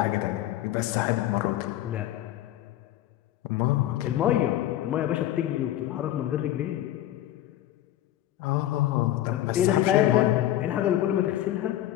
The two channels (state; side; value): quieter; right; 13.4 dB